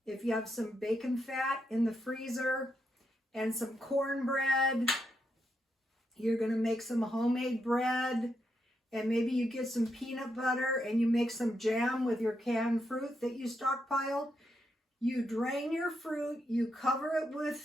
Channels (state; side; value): normal; both; correlation 0.82